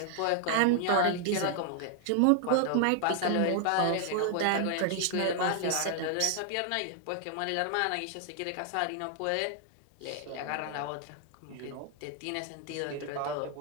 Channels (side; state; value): both; different; correlation 0.00